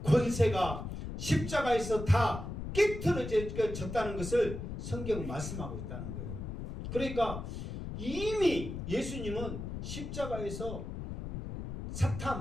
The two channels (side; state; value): left; noise; rumble, 6 dB below the sound